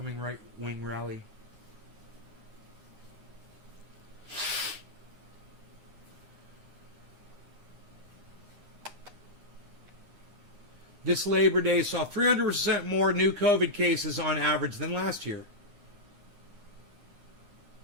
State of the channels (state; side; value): late; left; 9.8 ms